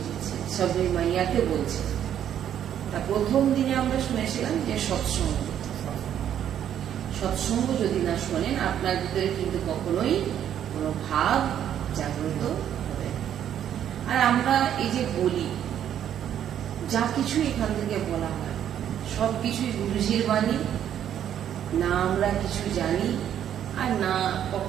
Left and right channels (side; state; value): left; quieter; 10.0 dB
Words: দিচ্ছে, সবে মাইয়াকে বলছে। তা প্রথম দিনে আমরা শুনেছিলাম যে সৎসঙ্গ, সৎসঙ্গ যদি না শোনেন আপনার ভিতরে কিন্তু কখনোই কোনো ভাব জাগ্রত হবে। আর আমরা এই যে বলি, যা কিছু এখান থেকে বলা হয় সবকিছুই গুরুজির বাণী, না আমরা কিছু জানি আর না